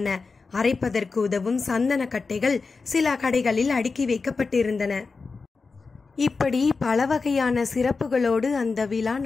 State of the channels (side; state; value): right; quieter; 4.4 dB